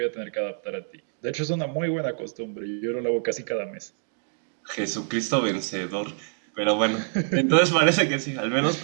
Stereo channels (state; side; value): silent; left; 61 dB below the other